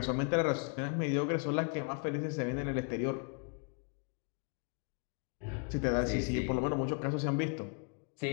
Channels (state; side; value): quieter; right; 39.9 dB